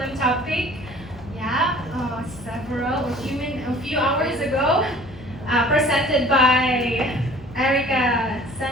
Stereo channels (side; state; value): both; normal; correlation 0.49